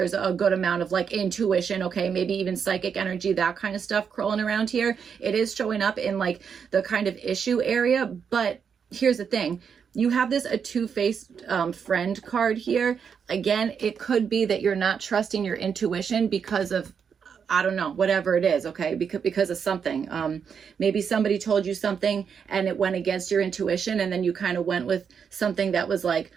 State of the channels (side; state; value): left; quieter; 6.8 dB